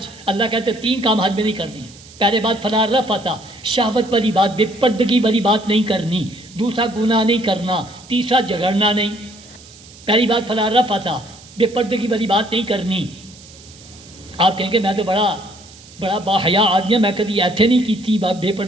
اللہ کہتے 3 کام حج میں نہیں کرنی. پہلے بات فلا رفث، شہوت والی بات، بے پردگی والی بات نہیں کرنی. دوسرا گناہ نہیں کرنا. تیسرا جھگڑنا نہیں. پہلی بات فلا رفث، بے پردگی والی بات نہیں کرنی. آپ کہیں گے میں تو بڑا باحیا آدمی ہے، میں کبھی ایتھے نہیں کی تھی بے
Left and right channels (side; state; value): right; noise; hiss, 22 dB below the sound